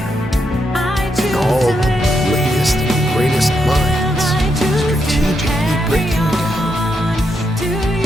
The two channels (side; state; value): both; normal; correlation 0.81